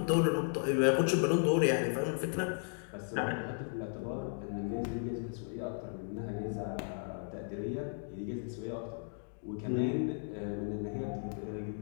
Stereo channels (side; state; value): right; silent; digital silence